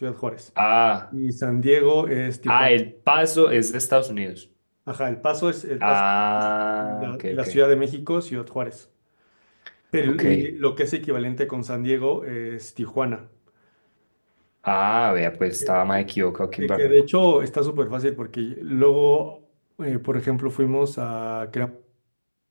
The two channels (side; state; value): both; inverted; correlation -1.00